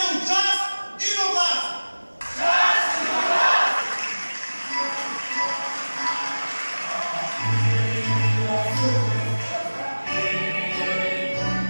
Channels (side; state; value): both; inverted; correlation -1.00